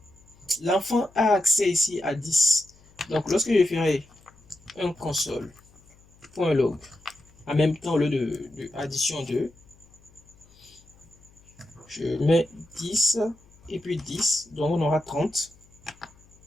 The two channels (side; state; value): left; noise; hum, 28 dB below the sound